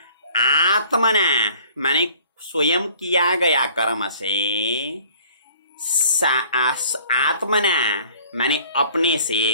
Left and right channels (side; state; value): both; inverted; correlation -0.53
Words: आत्मना माने स्वयं किया गया कर्म से, आत्मना माने अपने